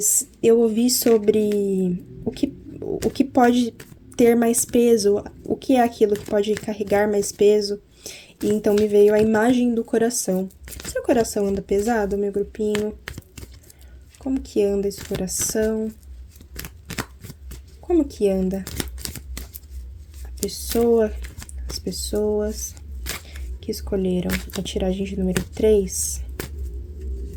eu ouvi sobre o que pode ter mais peso, o que é aquilo que pode carregar mais peso. E então me veio a imagem do coração. Seu coração anda pesado, meu grupinho? Como que anda esse coração? Como que anda as pessoas que escolheram a tiragem de número 3?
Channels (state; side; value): identical; both; correlation 1.00